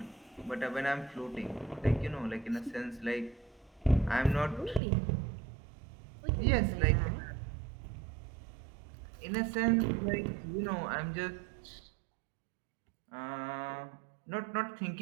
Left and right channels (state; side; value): drops out; left; at 4.8 s